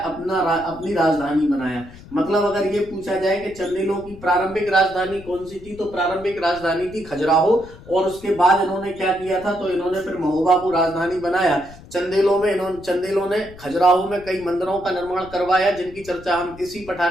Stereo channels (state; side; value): noise; left; rumble, 19 dB below the sound